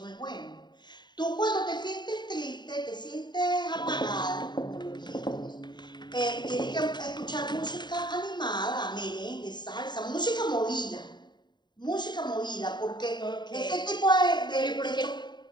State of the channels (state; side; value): late; right; 0.21 ms